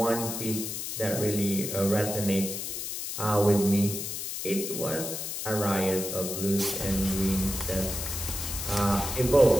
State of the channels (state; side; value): noise; left; hiss, 5 dB below the sound